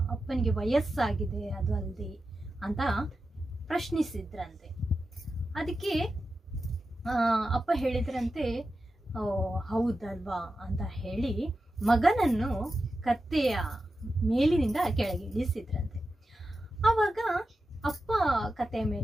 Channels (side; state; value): both; normal; correlation 0.91